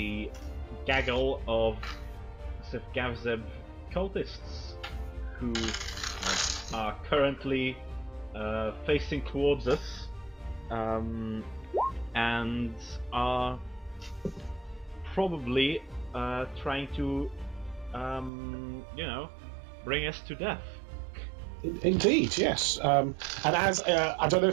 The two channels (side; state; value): left; drops out; at 18.3 s